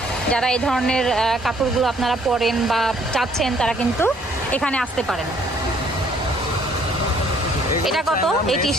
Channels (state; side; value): normal; both; correlation 0.62